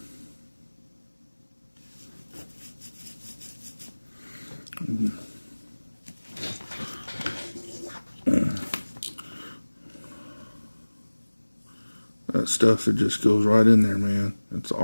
That stuff, it just goes right in there, man. It's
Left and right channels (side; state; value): both; inverted; correlation -1.00